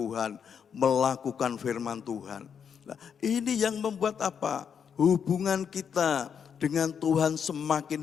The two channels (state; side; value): quieter; right; 7.3 dB